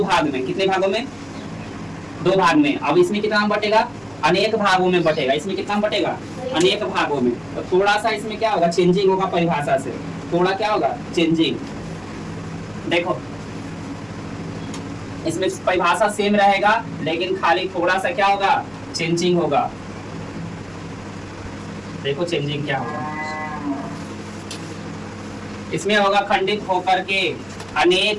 भाग में। कितने भागों में? 2 भाग में। अब इसमें कितना बटेगा? अनेक भागों में बटेगा। इसमें कितना बटेगा? अनेक भागों में। तो थोड़ा सा इसमें क्या होगा? चेंजिंग होगा परिभाषा से। थोड़ा क्या होगा? चेंजिंग। देखो इसमें परिभाषा सेम रहेगा लेकिन खाली थोड़ा सा क्या होगा? चेंजिंग होगा। देखो चेंजिंग क्या होगा इसमें होगा। खंडित होकर के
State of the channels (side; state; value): right; noise; rumble, 28 dB below the sound